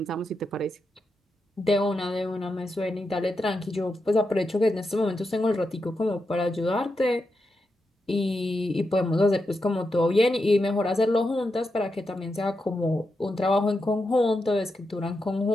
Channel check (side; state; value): both; normal; correlation 0.87